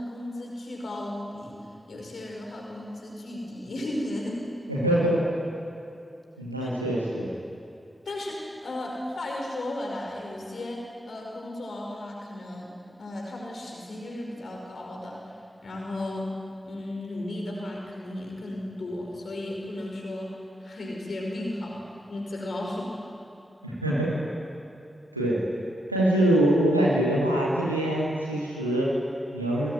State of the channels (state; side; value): normal; both; correlation 0.74